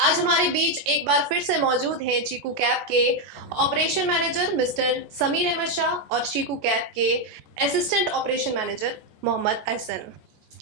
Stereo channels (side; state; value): left; late; 14 ms